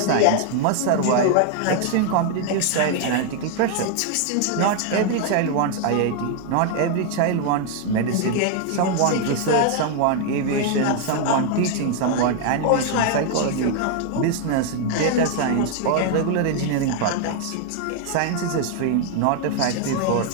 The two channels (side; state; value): both; different; correlation 0.00